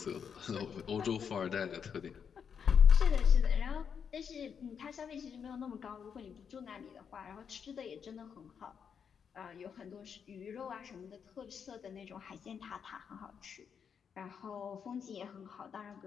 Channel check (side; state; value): right; quieter; 7.1 dB